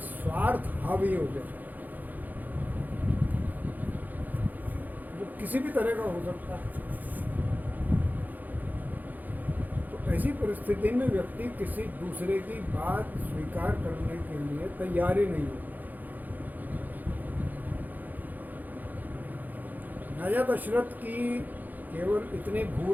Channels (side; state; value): left; late; 0.083 ms